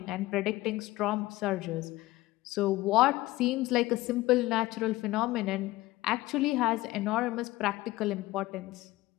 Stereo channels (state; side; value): quieter; right; 18.3 dB